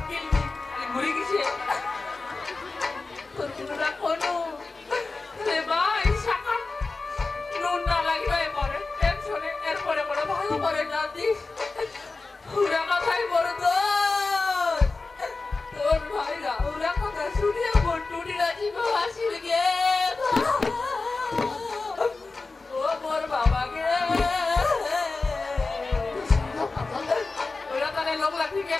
কিনবি তাহলে ঘুরে গেছে তোর কোনো কোনো রে ভাই শাখা নুন না লাগিবে পরে টেনশনে এরপরে কোনো ভালো করে না দিস ওরা কথাই বড় তোর ভাইরা ওরা কথা শুনিয়ে মোর টুটিরা জীব হাসিল গে ও মোর বাবাকে ওরা তাহলে লোক লাঠিকে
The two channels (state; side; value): quieter; right; 3.7 dB